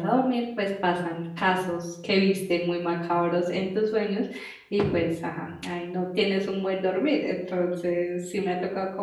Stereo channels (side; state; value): both; identical; correlation 1.00